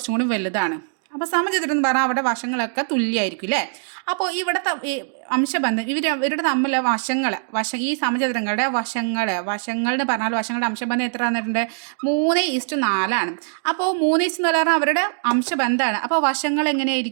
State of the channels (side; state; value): left; silent; digital silence